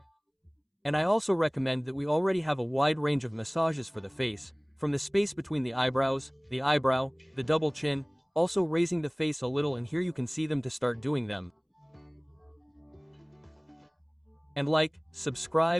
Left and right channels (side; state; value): both; identical; correlation 1.00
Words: And I also recommend that we already have a wide range of massages for the face, from the space between the eyebrows, the eyebrow, the double chin, also raising the face a little and here you can see them to start doing them. And like,